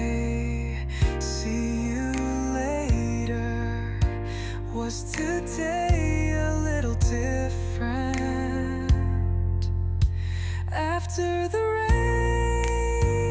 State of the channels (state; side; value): identical; both; correlation 1.00